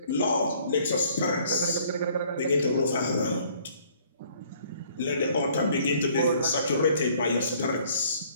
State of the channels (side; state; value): both; inverted; correlation -0.59